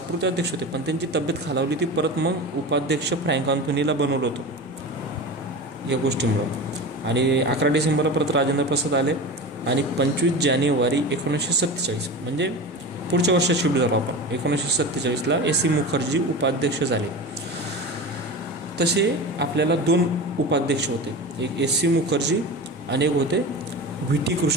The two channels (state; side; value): normal; both; correlation 0.29